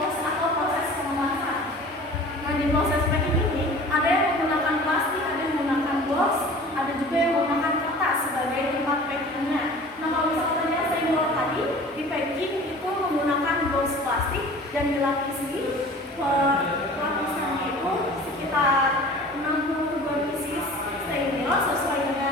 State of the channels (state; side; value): normal; both; correlation 0.43